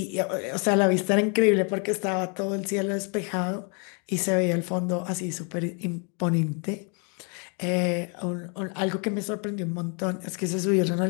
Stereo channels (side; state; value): right; quieter; 36.8 dB